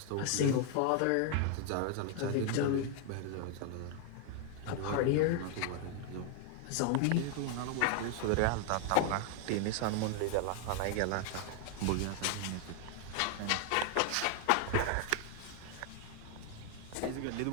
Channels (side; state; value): both; different; correlation 0.00